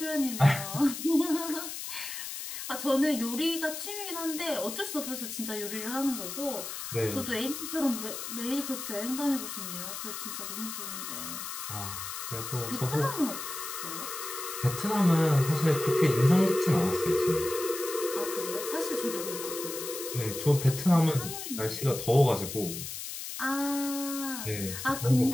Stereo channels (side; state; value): left; noise; hiss, 7 dB below the sound